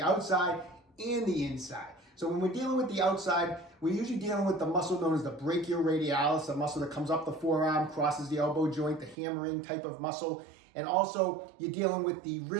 outside and the inside. So when we're dealing with the outside, we're usually dealing with the muscle known as the brachioradialis, the muscle that comes up the forearm, crosses the elbow joint, the hammering type of muscle. And also you're dealing with the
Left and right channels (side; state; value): left; drops out; at 9.2 s